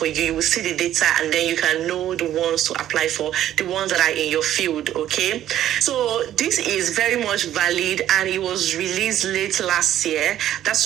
you. You will see the data and then you can know the ones to apply for, the ones that are in your field, okay? So this is very much valid and it was released late last year. That's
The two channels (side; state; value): left; quieter; 11.9 dB